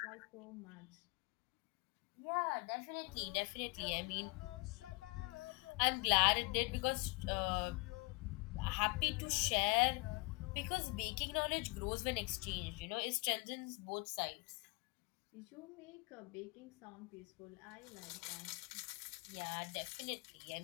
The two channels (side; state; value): right; quieter; 28.2 dB